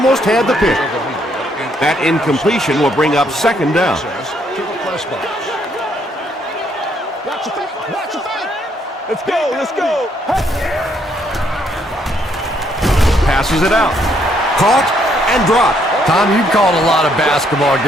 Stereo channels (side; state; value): both; normal; correlation 0.71